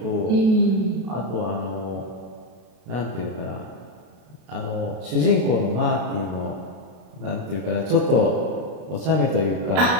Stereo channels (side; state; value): left; late; 32 ms